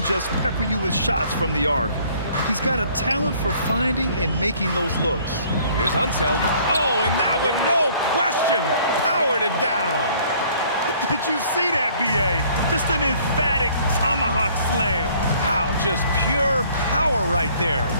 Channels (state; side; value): inverted; both; correlation -0.58